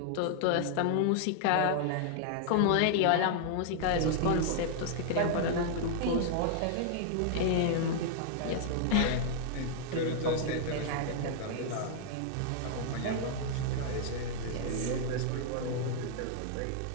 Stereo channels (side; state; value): both; different; correlation -0.01